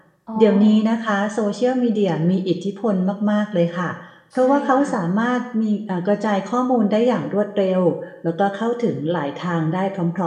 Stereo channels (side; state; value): both; identical; correlation 1.00